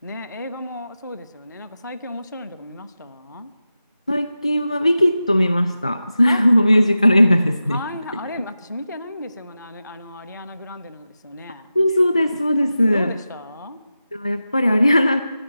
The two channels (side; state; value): both; inverted; correlation -0.93